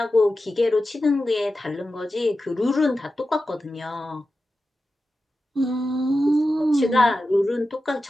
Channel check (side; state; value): both; normal; correlation 0.92